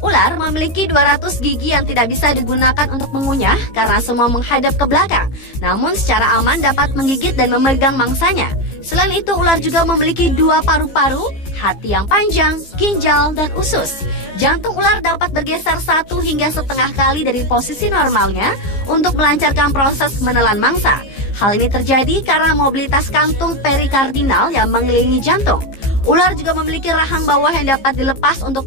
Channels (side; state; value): right; late; 15 ms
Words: Ular memiliki 200 gigi yang tidak bisa digunakan untuk mengunyah karena semua menghadap ke belakang. Namun secara aman dapat menggigit dan memegang mangsanya. Selain itu ular juga memiliki 2 paru-paru, hati yang panjang, ginjal, dan usus. Jantung ular dapat bergeser 1 hingga setengah kali dari posisi normalnya untuk melancarkan proses menelan mangsa. Hal ini terjadi karena mobilitas kantung perikardinal yang mengelilingi jantung. Ular juga memiliki rahang bawah yang dapat dilepas